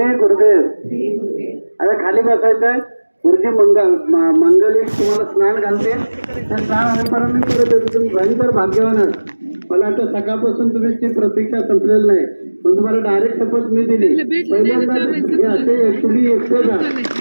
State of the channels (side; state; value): both; inverted; correlation -1.00